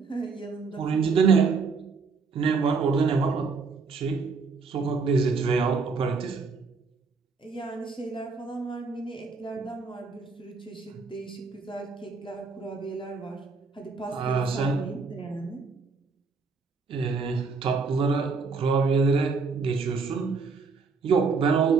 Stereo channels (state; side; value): quieter; left; 4.7 dB